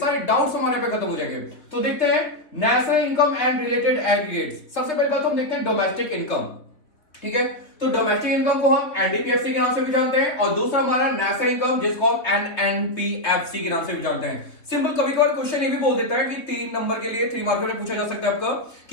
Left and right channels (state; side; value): late; right; 3.0 ms